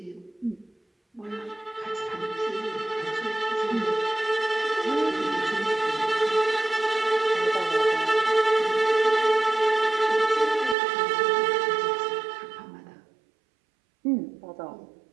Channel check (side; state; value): left; drops out; at 10.8 s